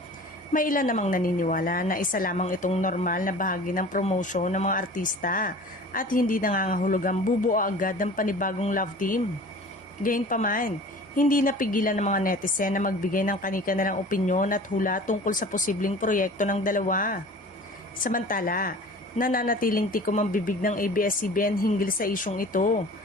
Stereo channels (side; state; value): both; normal; correlation 0.42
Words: May ilan namang naniniwala na isa lamang itong normal na bahagi ng promotion ng mga artista at hindi nangangahulugang bubuo agad ng panibagong love team. Gayunpaman, hindi napigilan ng mga netizen na magbigay ng kani-kanilang opinyon at hula tungkol sa posibleng proyekto ng dalawa. Samantala, nananatiling tikom ang bibig ng ABS-CBN hinggil sa isyong ito.